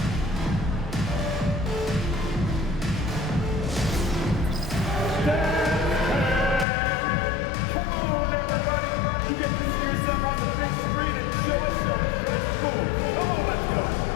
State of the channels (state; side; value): drops out; right; at 6.7 s